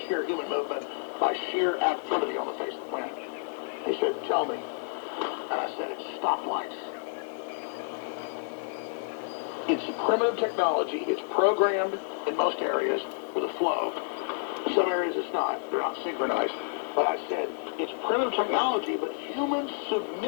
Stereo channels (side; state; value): right; silent; digital silence